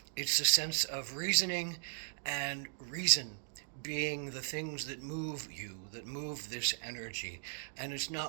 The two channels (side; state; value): left; silent; digital silence